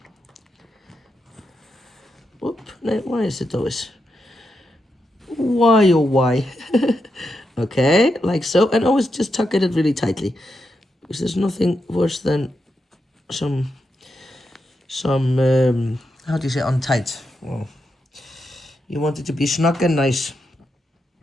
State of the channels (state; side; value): normal; both; correlation 0.85